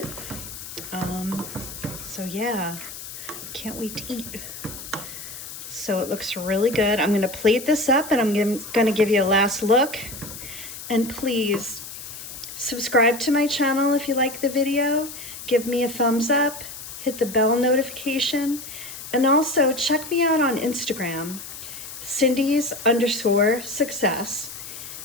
So yeah, can't wait to eat. So it looks really good. I'm gonna plate this up and I'm gonna give you a last look. And please subscribe to my channel if you like the video. Give me a thumbs up, hit the bell notification, and also check me out on Instagram, Cindy's_success.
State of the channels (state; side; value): noise; left; hiss, 11 dB below the sound